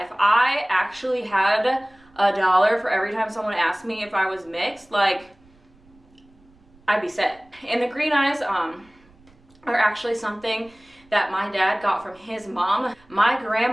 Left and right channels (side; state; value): right; noise; rumble, 29 dB below the sound